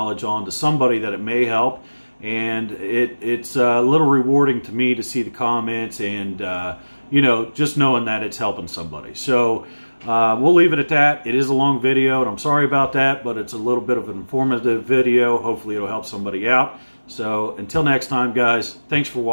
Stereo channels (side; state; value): both; inverted; correlation -1.00